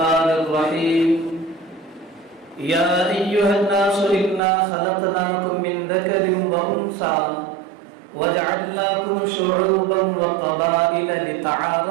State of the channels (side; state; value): left; drops out; at 4.4 s